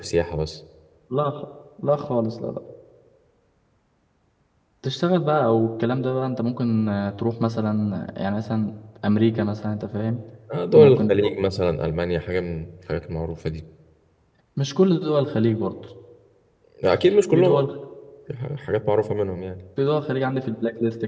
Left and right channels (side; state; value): both; identical; correlation 1.00